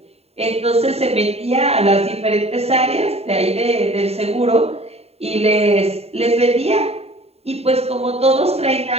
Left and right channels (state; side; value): late; left; 0.30 ms